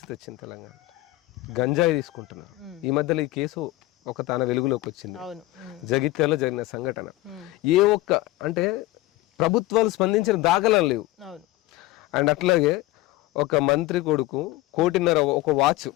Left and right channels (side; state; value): right; quieter; 18.1 dB